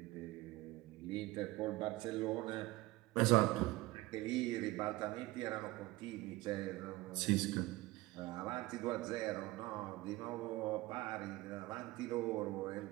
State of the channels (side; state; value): left; quieter; 19.4 dB